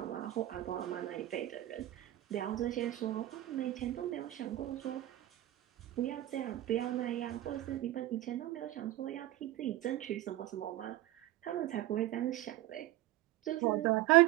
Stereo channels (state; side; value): quieter; left; 15.2 dB